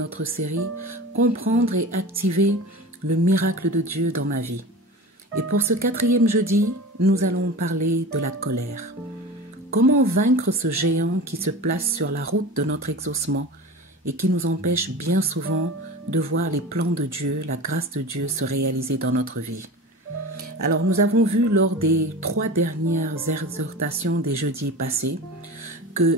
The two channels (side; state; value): both; normal; correlation 0.33